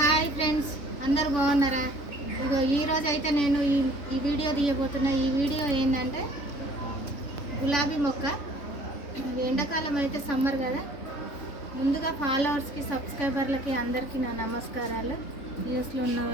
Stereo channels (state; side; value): late; right; 3.5 ms